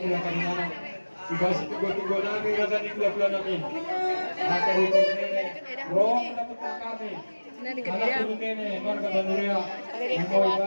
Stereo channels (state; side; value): inverted; both; correlation -1.00